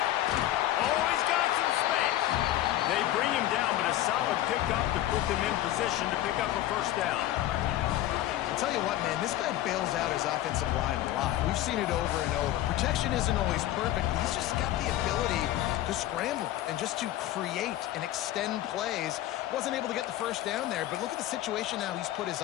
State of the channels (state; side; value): quieter; right; 13.9 dB